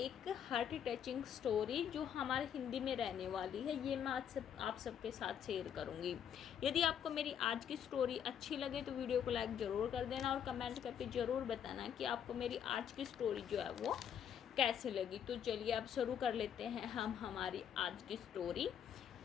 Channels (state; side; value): quieter; right; 8.8 dB